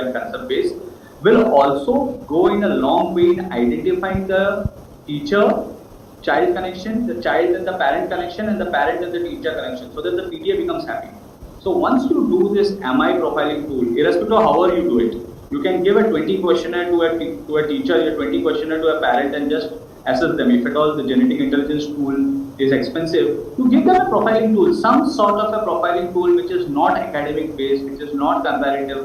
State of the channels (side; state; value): both; identical; correlation 1.00